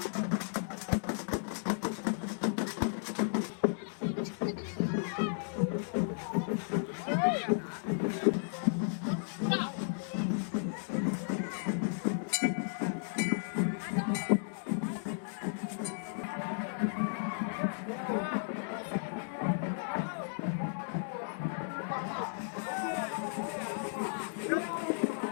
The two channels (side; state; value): right; silent; digital silence